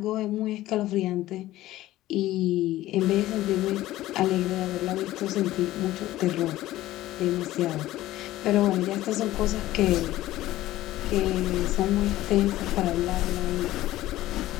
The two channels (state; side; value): quieter; right; 15.6 dB